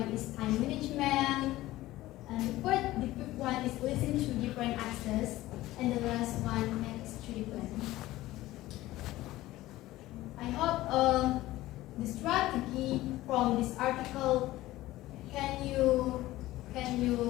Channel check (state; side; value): quieter; right; 16.7 dB